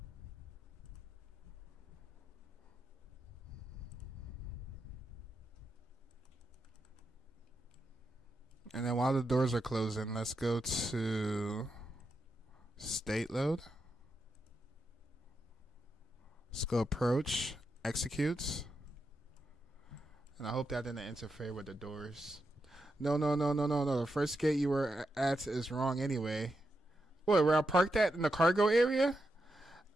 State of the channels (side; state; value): both; normal; correlation 0.85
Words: And then while the doors are closing, let's go to state load. Let's go approach, execute. And I hope that didn't interfere with the doors. No. The first gate you were at is wrong anyway. Wait, where I parked at in the cargo area?